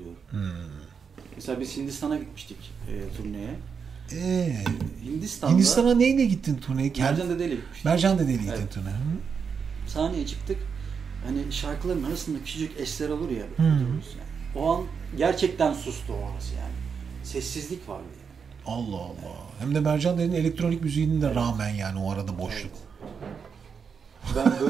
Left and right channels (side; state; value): left; quieter; 6.2 dB